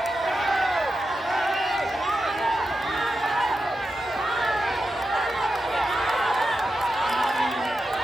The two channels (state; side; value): normal; both; correlation 0.89